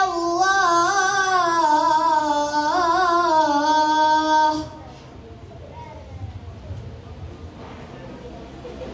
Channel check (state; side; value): identical; both; correlation 1.00